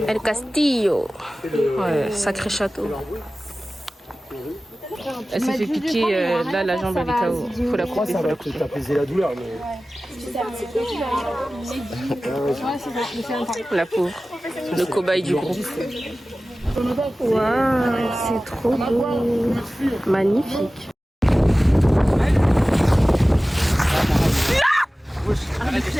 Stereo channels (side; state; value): both; normal; correlation 0.96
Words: El Castillo. Ouais, sacré château. Elle s'est fait piquer, là la jambe elle est KO. Faut la couper. Ça va peut-être apaiser la douleur, mais. La pauvre. Le cobaye du groupe. Waouh, c'est trop beau. Magnifique.